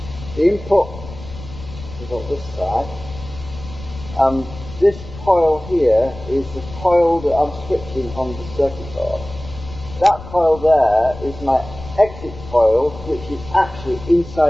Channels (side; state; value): left; noise; rumble, 14 dB below the sound